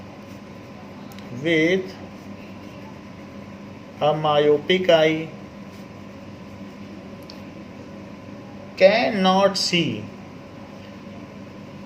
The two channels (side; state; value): both; identical; correlation 1.00